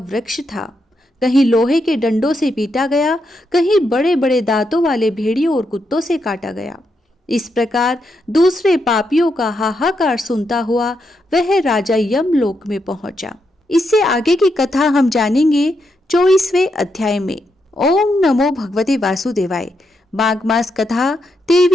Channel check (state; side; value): normal; both; correlation 0.82